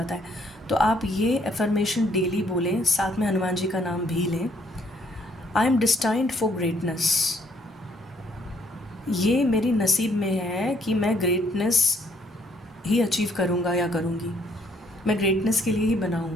है, तो आप ये अफर्मेशन डेली बोलें, साथ में हनुमान जी का नाम भी लें। आई एम डिस्टाइंड फॉर ग्रेटनेस। ये मेरी नसीब में है कि मैं ग्रेटनेस ही अचीव करूँगा या करूँगी। मैं ग्रेटनेस के लिए ही बना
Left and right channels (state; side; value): normal; both; correlation 0.67